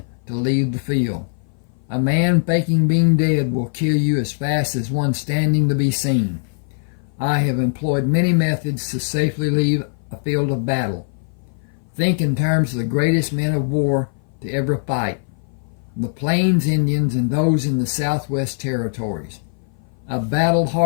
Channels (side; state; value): right; silent; 58 dB below the other